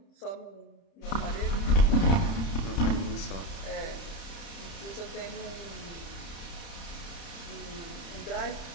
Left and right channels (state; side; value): late; right; 31 ms